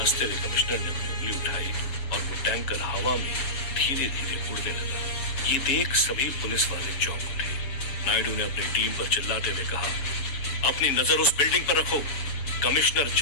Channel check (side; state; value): right; late; 6.9 ms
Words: हुए कमिश्नर ने अपनी उंगली उठाई और वो टैंकर हवा में धीरे धीरे उड़ने लगा। ये देख सभी पुलिस वाले चौंक उठे। नायडू ने अपनी टीम पर चिल्लाते हुए कहा, अपनी नजर उस बिल्डिंग पर रखो, कमिश्नर